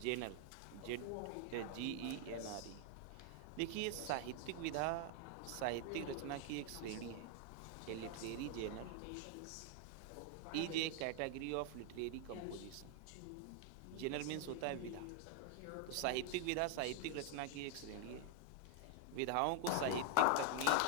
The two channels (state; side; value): different; both; correlation 0.00